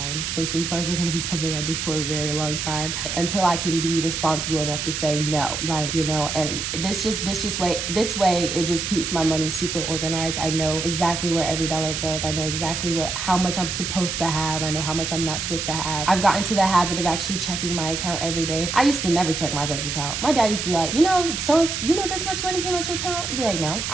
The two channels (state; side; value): noise; right; hiss, 3 dB below the sound